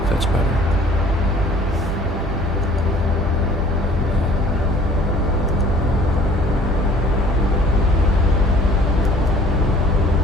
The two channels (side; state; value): both; normal; correlation 0.53